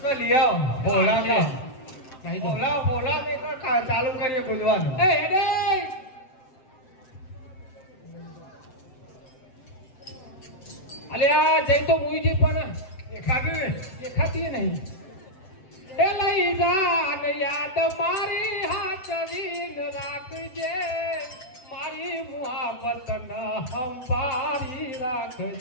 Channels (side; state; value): right; late; 7.7 ms